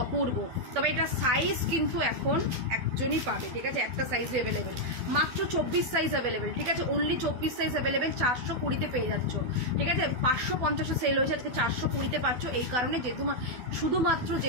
অপূর্ব। তবে এটা সাইজ কিন্তু এখন একজনই পাবে, ঠিক আছে, একটা সাইজ অ্যাভেলেবেল, মাত্র 24 সাইজ অ্যাভেলেবেল, ঠিক আছে, অনলি 24 সাইজ অ্যাভেলেবেল, 420-তে পেয়ে যাচ্ছ, ঠিক আছে, 550-এ সেল হয়েছে, আজকে 420-তে পাচ্ছ। এই কারণে যেহেতু শুধুমাত্র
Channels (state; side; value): late; left; 12 ms